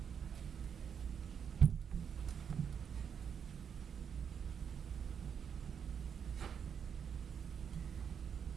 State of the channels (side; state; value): left; quieter; 7.4 dB